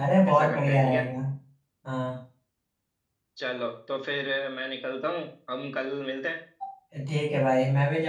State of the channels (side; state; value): both; identical; correlation 1.00